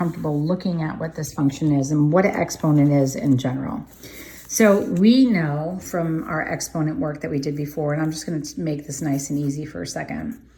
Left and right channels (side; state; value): both; identical; correlation 1.00